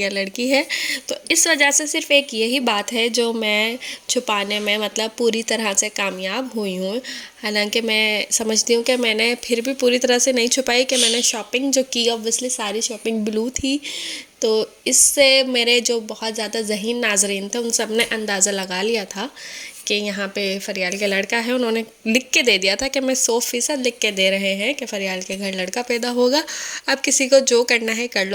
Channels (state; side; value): identical; both; correlation 1.00